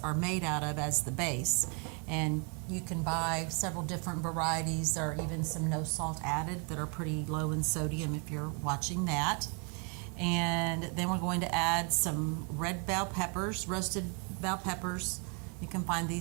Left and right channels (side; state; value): left; quieter; 34.2 dB